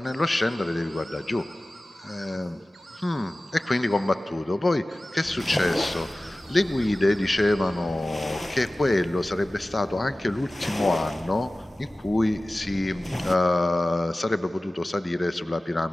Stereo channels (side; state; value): both; normal; correlation 0.97